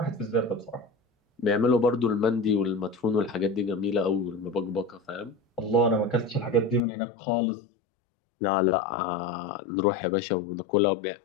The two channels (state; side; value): drops out; right; at 6.8 s